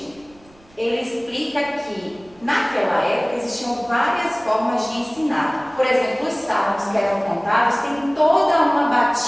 ele explica que naquela época existiam várias formas de ensinar. Por exemplo, os salmos que eram cantados têm toda uma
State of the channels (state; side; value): noise; right; rumble, 29 dB below the sound